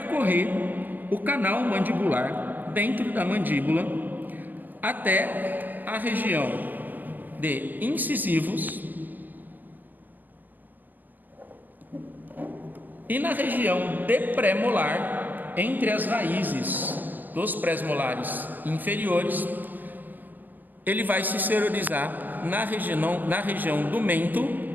o canal mandibular dentro da mandíbula até a região de incisivos e na região de pré-molar, entre as raízes dos pré-molares inferiores, ele vai se exteriorizar na região do mento,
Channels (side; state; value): left; late; 0.089 ms